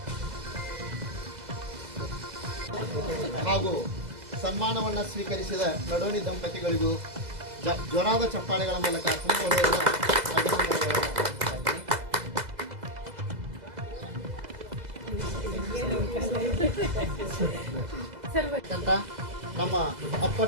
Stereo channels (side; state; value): left; late; 2.0 ms